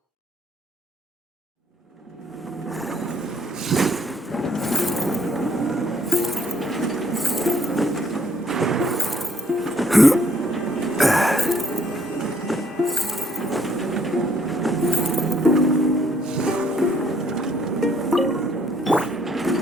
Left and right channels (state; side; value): normal; both; correlation 0.67